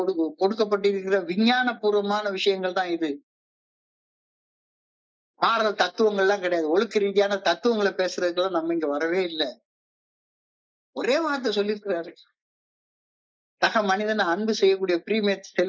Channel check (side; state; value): both; identical; correlation 1.00